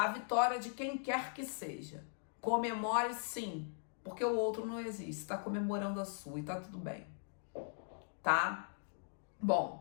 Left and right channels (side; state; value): right; silent; digital silence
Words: vitória de quem quer que seja. Comemore sim, porque o outro não existe, está comemorando a sua e tá tudo bem, tá?